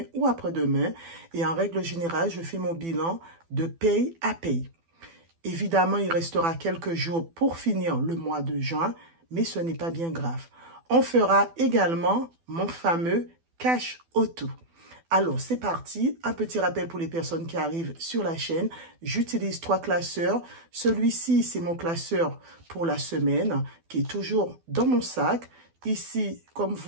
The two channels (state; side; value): late; left; 12 ms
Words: ou après-demain. Et en règle générale, je fais mon bilan de paye à paye. Évidemment, il restera quelques jours pour finir le mois de juin, mais ce n'est pas bien grave. On fera également mon fameux cash auto. Alors, c'est parti. Un petit rappel pour les personnes qui arrivent sur la chaîne. J'utilise 3 classeurs. Celui-ci, c'est mon classeur pour la semaine qui est toujours dans mon sac. Ici, comme